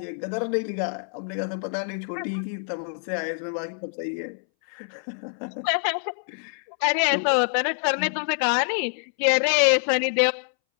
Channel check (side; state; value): right; silent; 61 dB below the other